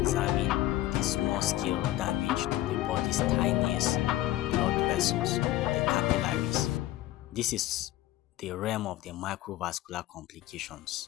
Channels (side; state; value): right; quieter; 15.2 dB